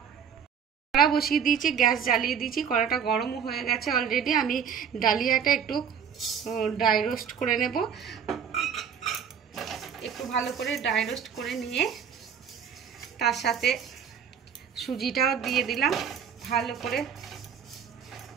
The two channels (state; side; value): quieter; left; 7.6 dB